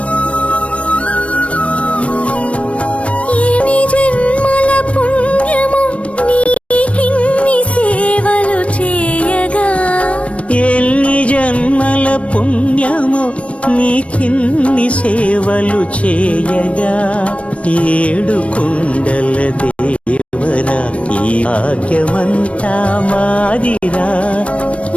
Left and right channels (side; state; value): right; late; 0.063 ms